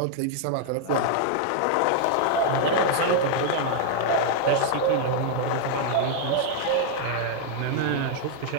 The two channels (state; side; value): different; both; correlation -0.01